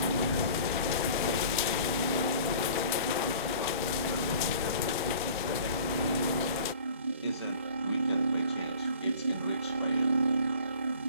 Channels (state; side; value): inverted; both; correlation -0.47